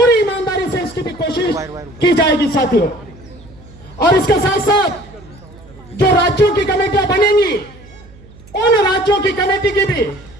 ईमानदारी से इसकी भी कोशिश की जाएगी साथियों। और इसके साथ साथ जो राज्यों की कमेटियां बनेंगी उन राज्यों की कमेटी की भी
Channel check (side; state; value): right; noise; hum, 22 dB below the sound